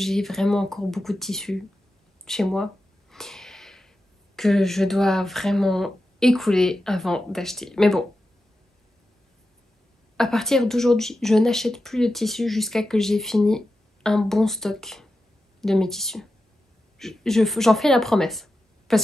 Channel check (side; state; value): both; normal; correlation 0.91